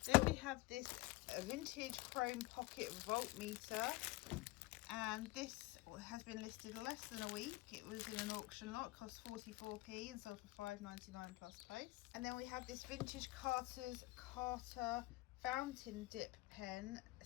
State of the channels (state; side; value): quieter; right; 20.6 dB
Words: Then we have this vintage chrome pocket voltmeter, and this has been listed less than a week. It was in an auction lot, cost 44p and sold for £5.99 plus post. And then we have this vintage Carter fountain dip pen.